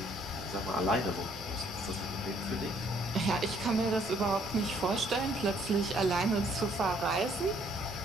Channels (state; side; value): normal; both; correlation 0.64